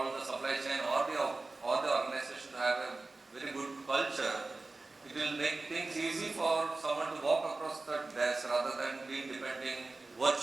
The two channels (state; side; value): quieter; left; 3.4 dB